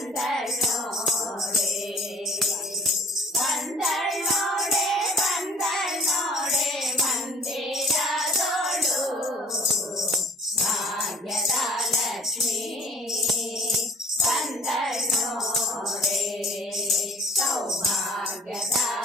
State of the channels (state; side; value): normal; both; correlation 0.52